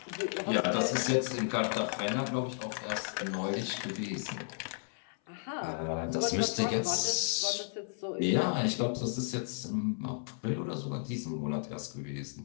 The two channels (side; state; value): right; silent; 55 dB below the other